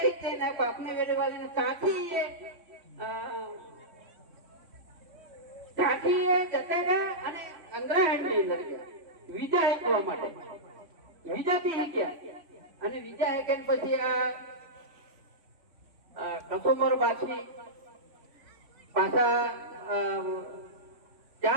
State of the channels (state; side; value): late; left; 3.5 ms